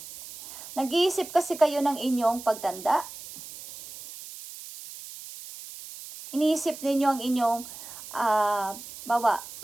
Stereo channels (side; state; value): right; noise; hiss, 14 dB below the sound